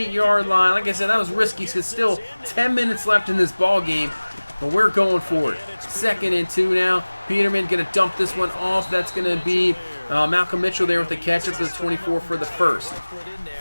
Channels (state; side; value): inverted; both; correlation -1.00